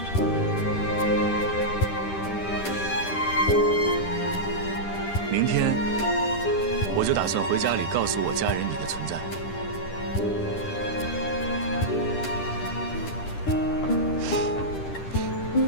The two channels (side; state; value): right; late; 10 ms